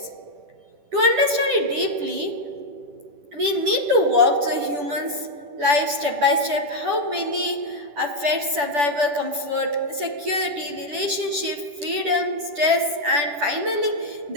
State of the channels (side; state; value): left; late; 10 ms